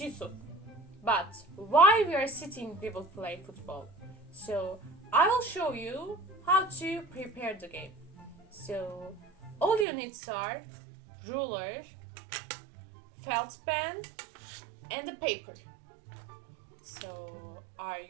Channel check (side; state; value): left; drops out; at 9.9 s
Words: But while we are sitting, we will play football. So I will show you how to prepare the game. So all you need are ruler, felt pen, and the paper. So are